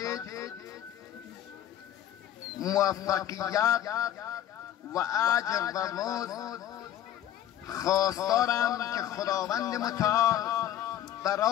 موفقیت و اجر و مزد خواستارم که خداوند متعال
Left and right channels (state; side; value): quieter; right; 11.5 dB